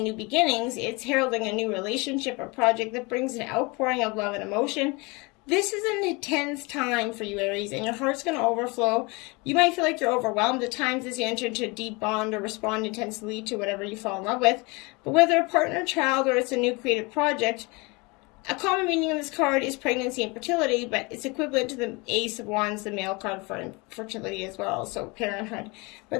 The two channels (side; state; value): right; quieter; 26.9 dB